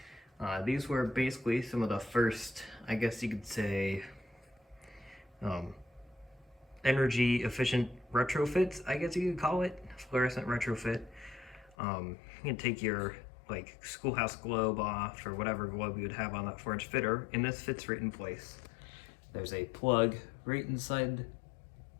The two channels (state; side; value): drops out; right; at 11.8 s